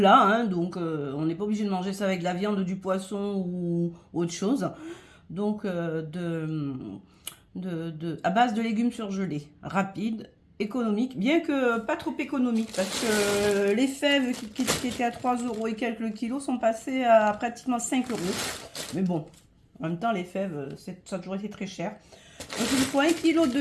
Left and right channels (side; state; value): both; identical; correlation 1.00